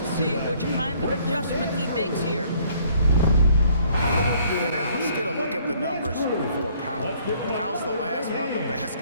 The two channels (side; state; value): both; inverted; correlation -0.61